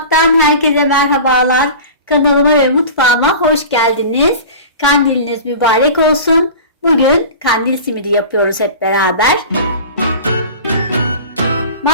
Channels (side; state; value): both; inverted; correlation -0.36